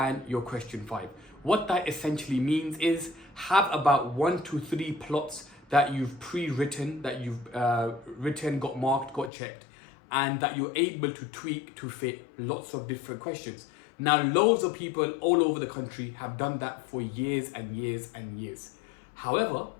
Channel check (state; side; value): drops out; right; at 9.3 s